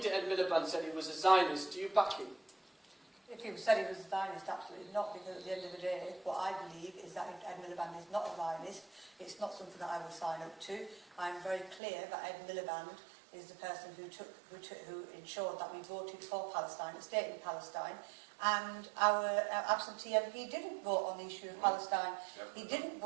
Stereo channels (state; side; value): drops out; left; at 11.8 s